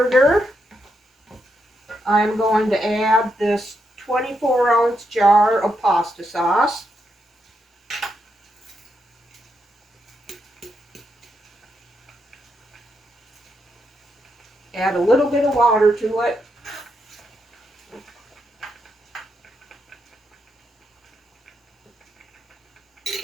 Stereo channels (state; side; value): normal; both; correlation 0.81